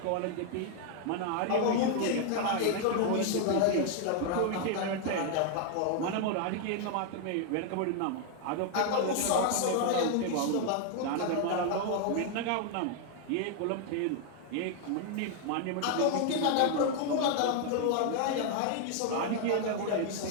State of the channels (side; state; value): both; different; correlation 0.00